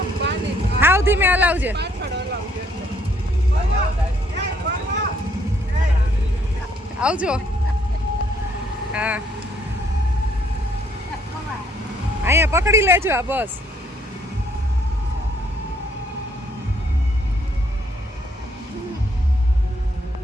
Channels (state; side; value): normal; both; correlation 0.68